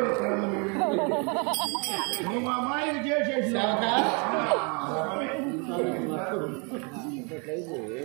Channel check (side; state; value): left; quieter; 34.1 dB